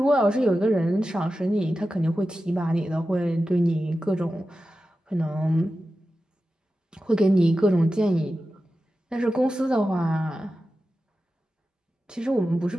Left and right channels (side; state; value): both; normal; correlation 0.93